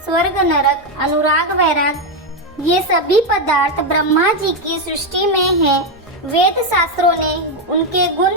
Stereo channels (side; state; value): both; normal; correlation 0.06